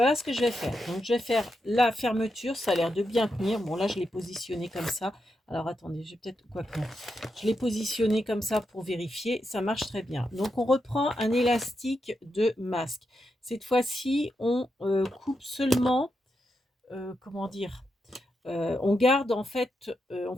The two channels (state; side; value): normal; both; correlation 0.85